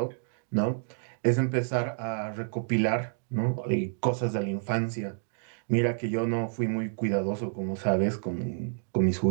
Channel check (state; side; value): silent; left; digital silence